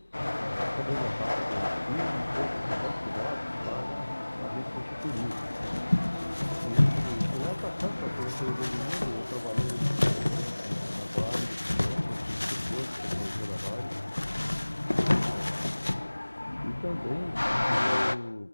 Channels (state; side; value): inverted; both; correlation -1.00